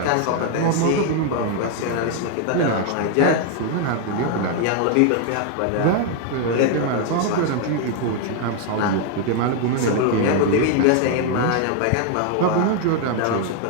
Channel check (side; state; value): both; different; correlation 0.00